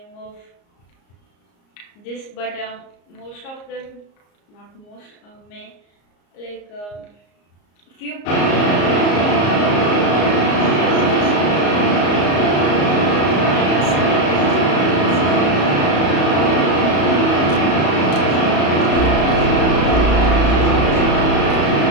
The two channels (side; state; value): right; late; 34 ms